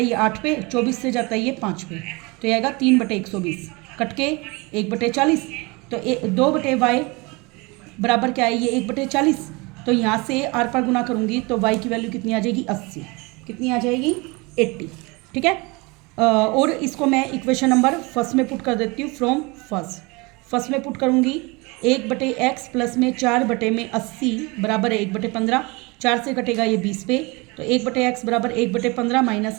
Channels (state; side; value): quieter; left; 26.5 dB